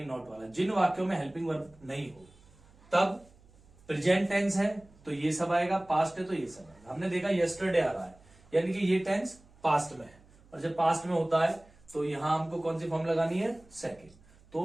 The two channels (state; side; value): noise; right; hum, 27 dB below the sound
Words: नॉट वाला। जिन वाक्यों में हेल्पिंग वर्ब नहीं हो तब प्रेजेंट टेंस है तो ये सब आएगा, पास्ट है तो ये सब आएगा। हमने देखा यस्टरडे आ रहा है, यानी कि ये टेंस पास्ट में है, और जब पास्ट में होता है तो यहां हमको कौन सी फॉर्म लगानी है, सेकंड।